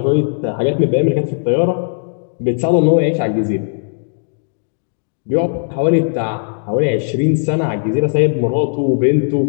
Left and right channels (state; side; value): silent; right; digital silence